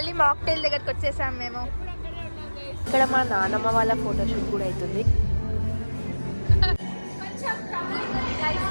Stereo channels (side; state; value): both; inverted; correlation -1.00